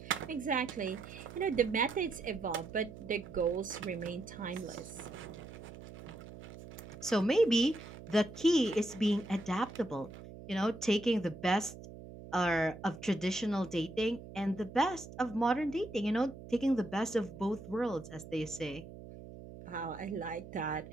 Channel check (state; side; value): noise; right; hum, 14 dB below the sound